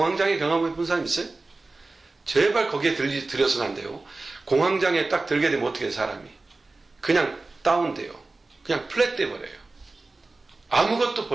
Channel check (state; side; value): quieter; left; 3.4 dB